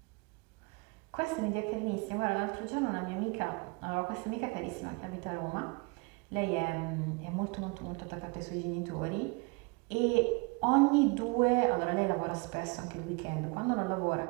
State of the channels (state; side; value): quieter; left; 29.3 dB